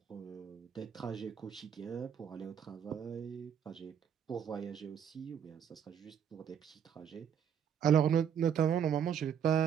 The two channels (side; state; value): left; quieter; 8.3 dB